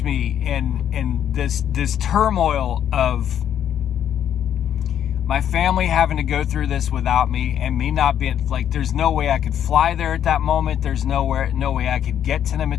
me in this turmoil of my family having to go through this without me, and me not being, like, there's no way I could fly there at that moment. There's no way I could get to them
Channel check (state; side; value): quieter; right; 9.7 dB